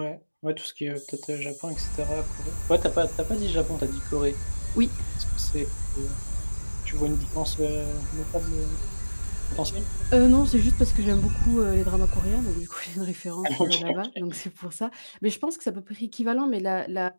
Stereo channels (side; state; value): both; inverted; correlation -1.00